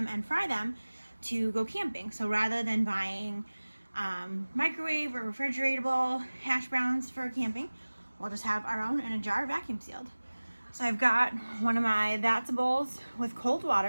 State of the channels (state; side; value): inverted; both; correlation -1.00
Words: and fry them to go camping. So rather than buying microwave or refrigeratable hash browns for camping, we'll just have our own in a jar, vacuum sealed. So I've got one of my That's bowls with cold